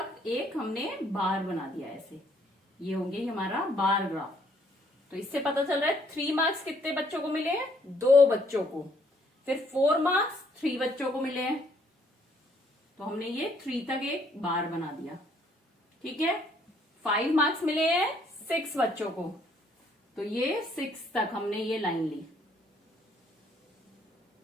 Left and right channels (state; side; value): normal; both; correlation 0.66